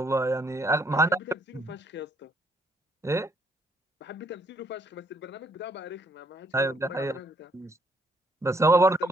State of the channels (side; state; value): both; normal; correlation 0.69